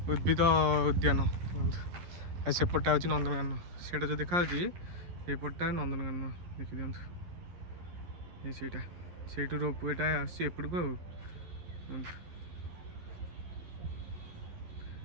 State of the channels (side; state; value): left; late; 11 ms